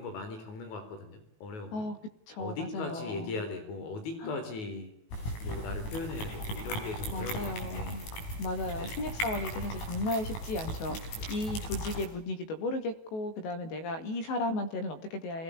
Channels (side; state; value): right; late; 18 ms